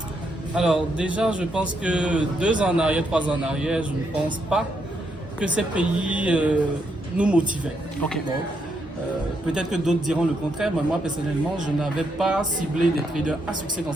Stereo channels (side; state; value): both; normal; correlation 0.78